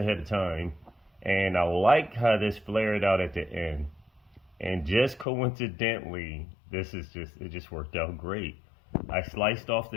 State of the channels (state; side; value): drops out; right; at 5.2 s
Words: of time, and I like how this flared out at the end. And just coincidentally, it just worked out great. I sliced off